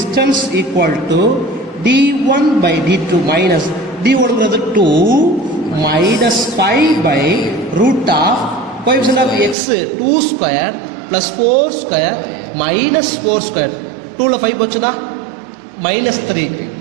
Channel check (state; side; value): drops out; left; at 9.6 s